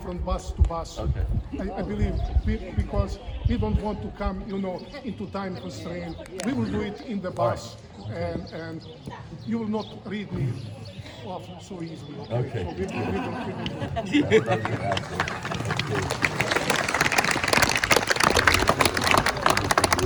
bus to bus. Okay. I believe, because we don't want to come, into time constraint. We will do it in the bus. And you will not read me off so easily. Okay. So we will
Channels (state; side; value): identical; both; correlation 1.00